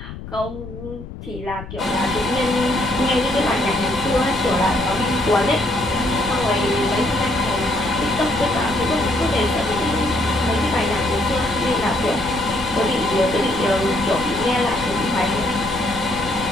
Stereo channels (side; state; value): left; noise; rumble, 12 dB below the sound